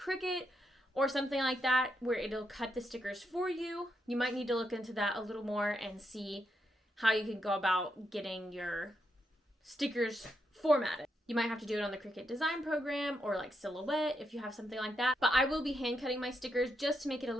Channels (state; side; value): normal; both; correlation 0.82